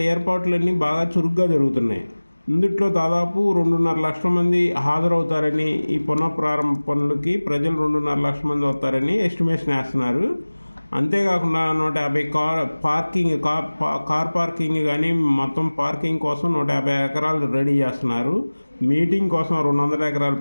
ఏర్పాట్లన్నీ బాగా చురుగ్గా జరుగుతున్నాయి. ఇందుట్లో దాదాపు 2.5 లక్షల మంది హాజరవుతారని, ఈ పునఃప్రారంభ పనులకి ప్రజలు 2.5 లక్షల మంది వస్తారని ఎస్టిమేషన్ వేస్తున్నారు. అంతేకాకుండా 150 కార్ పార్కింగ్ కానీ మొత్తం పార్కింగ్ కోసం 150 ఎకరాలు రెడీ చేస్తున్నారు. మీటింగ్ కోసం 200 ఎకరాల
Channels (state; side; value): inverted; both; correlation -1.00